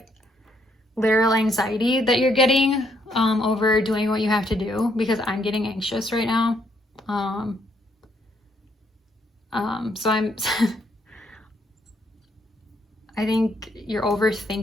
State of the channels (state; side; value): normal; both; correlation 0.72